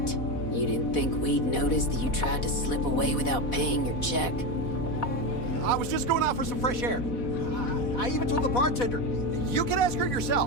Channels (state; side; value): late; right; 4.1 ms